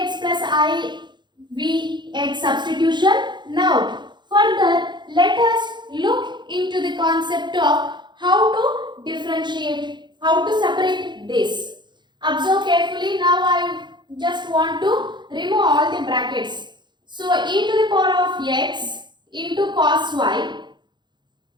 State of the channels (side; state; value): left; late; 0.22 ms